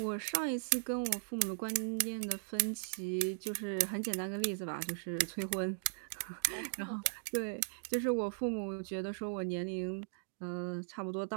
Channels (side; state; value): left; silent; digital silence